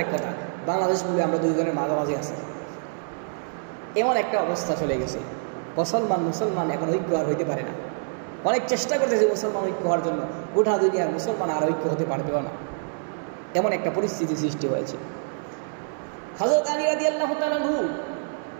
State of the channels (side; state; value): left; silent; 60 dB below the other